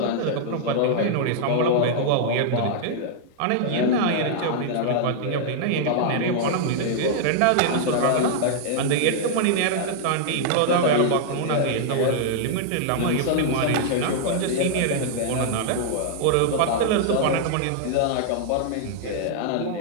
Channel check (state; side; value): different; both; correlation -0.01